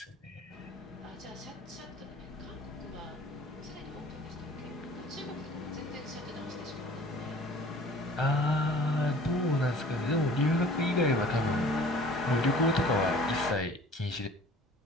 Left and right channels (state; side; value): normal; both; correlation 0.48